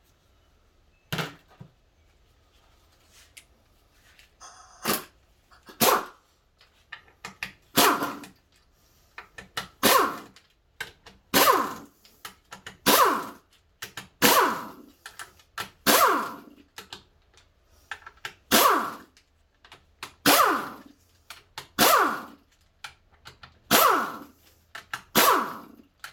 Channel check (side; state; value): both; identical; correlation 1.00